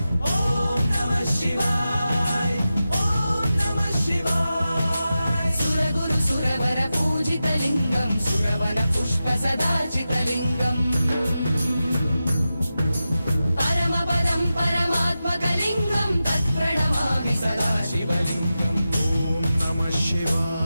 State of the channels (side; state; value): both; inverted; correlation -0.92